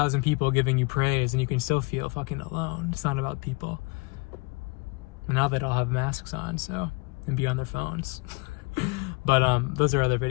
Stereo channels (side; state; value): right; quieter; 27.6 dB